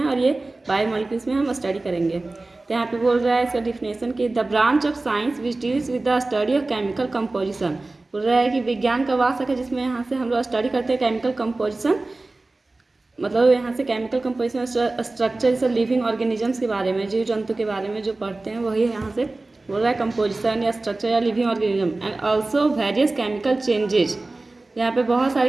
और ये बायोमोलिक्यूल्स में हम स्टडी करेंगे। तो यहाँ पे बोल रहा है इसका डिफिनेशन कि the branch of science which deals with the study of chemical composition. बोल रहा है कि विज्ञान का वास्तव है जिसमें यहाँ से हम लोग स्टडी करते हैं केमिकल कंपोजिशन, मतलब यहाँ से केमिकल कंपोजिशन स्ट्रक्चर सब लिविंग ऑर्गेनिजम्स के बारे में, जीव जंतु के बारे में जो पढ़ते हैं वही यहाँ से बोल रहा है कंपोजिशन या स्ट्रक्चर या living organism. And also various chemical changes. यहाँ पे बहुत सारे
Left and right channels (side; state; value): left; quieter; 3.1 dB